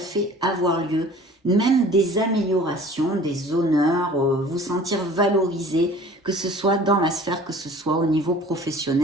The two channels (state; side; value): normal; both; correlation 0.47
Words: avoir lieu, même des améliorations, des honneurs, vous sentir valorisé, que ce soit dans la sphère, que ce soit au niveau